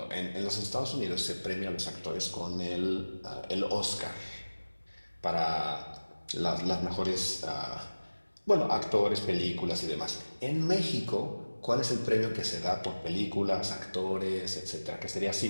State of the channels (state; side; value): inverted; both; correlation -1.00